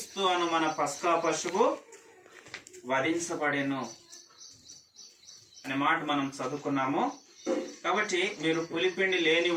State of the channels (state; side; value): identical; both; correlation 1.00